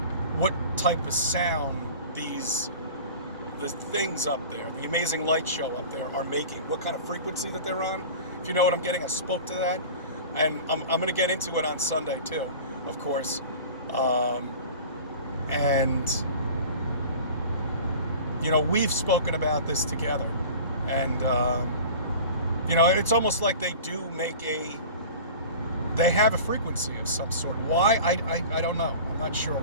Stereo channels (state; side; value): inverted; both; correlation -0.38